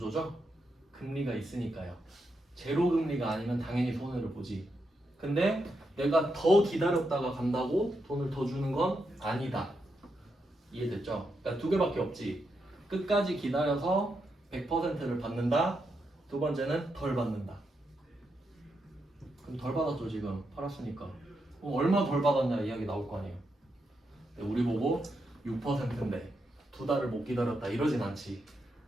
금리가 있으니까요. 제로 금리가 아니면 당연히 손해를 보지. 근데 내가 더 기다렸다가 간다고 돈을 더 주는 건 아니다. 이해됐죠? 그러니까 2개밖에 없지. 끝까지 기다려서 100%를 받는다. 두 번째는 덜 받는다. 그럼 덜 받았죠 지금 팔았으니까. 그럼 얼마 덜 받았냐 이야기 나올 거 아니에요. 우리 보고 6%인데 2달을 못 기다렸다 이러진 않지.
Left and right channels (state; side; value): normal; both; correlation 0.83